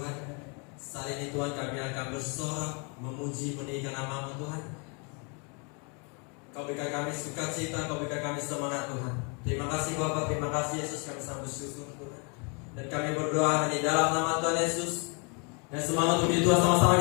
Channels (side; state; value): right; quieter; 35.2 dB